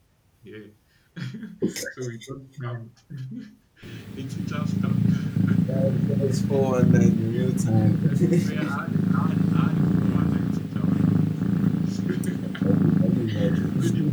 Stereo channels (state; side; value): identical; both; correlation 1.00